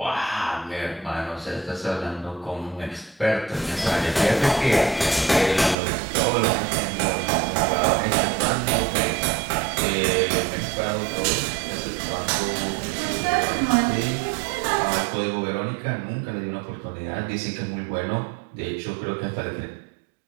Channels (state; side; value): drops out; left; at 5.8 s